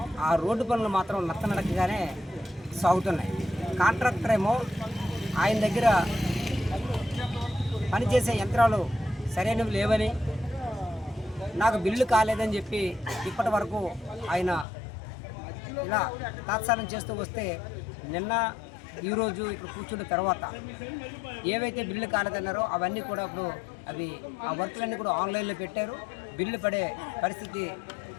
ఆ రోడ్డు పనులు మాత్రం నత్తనడకగానే సాగుతున్నాయి. కాంట్రాక్టర్ ఏమో ఆయన దగ్గర పనిచేసే యంత్రాలు సరైనవి లేవని, నాకు బిల్లు కాలేదని చెప్పి ఇప్పటి వరకు ఆయన ఇలా తాత్సారం చేస్తూ వస్తే నిన్న ఈరోజు ఇక్కడ కూర్చున్న తర్వాత ఏవైతే బిల్లు కాలేదన్నారో అవన్నీ కూడా ఇప్పుడు ఆ వర్కులన్నీ కూడా ఆన్లైన్లో పెట్టారు. బిల్లు పడే పరిస్థితి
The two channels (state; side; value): drops out; right; at 14.7 s